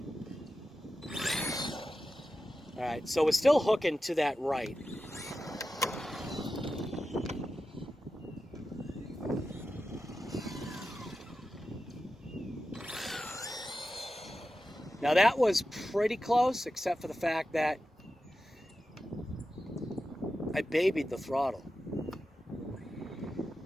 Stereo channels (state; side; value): normal; both; correlation 0.92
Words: All right, so we're still hooking to that right. Now that was pretty close, except for the fact that I babied the throttle.